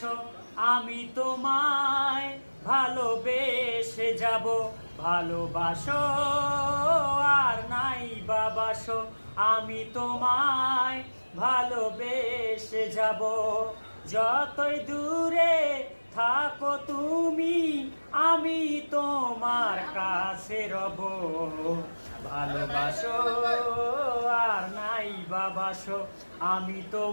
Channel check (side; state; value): both; inverted; correlation -1.00